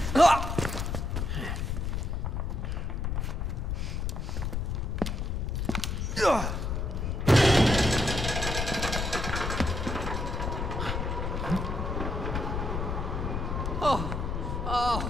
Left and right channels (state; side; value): noise; left; rumble, 1 dB below the sound